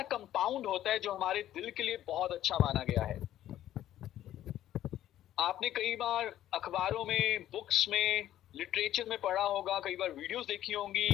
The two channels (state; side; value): quieter; right; 12.6 dB